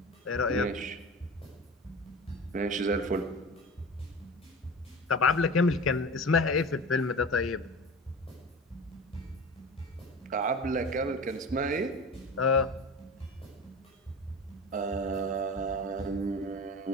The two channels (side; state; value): both; normal; correlation 0.33